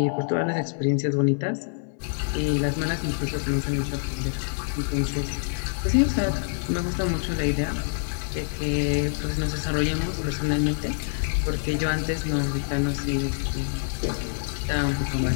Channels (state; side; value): silent; right; digital silence